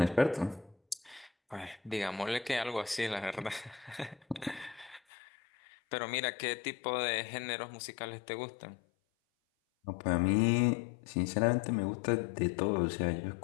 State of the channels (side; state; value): right; drops out; at 5.0 s